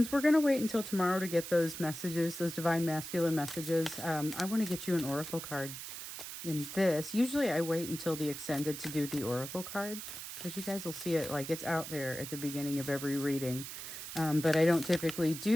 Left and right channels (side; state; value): right; noise; hiss, 9 dB below the sound